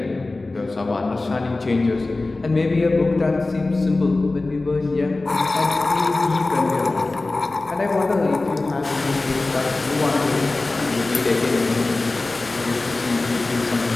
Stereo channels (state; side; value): quieter; right; 3.2 dB